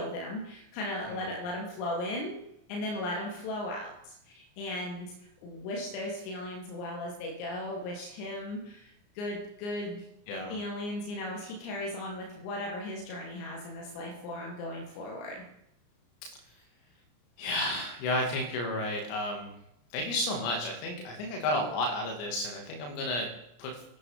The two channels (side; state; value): right; late; 34 ms